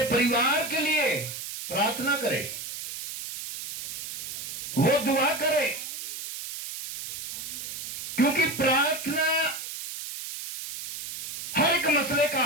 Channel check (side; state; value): right; noise; hiss, 8 dB below the sound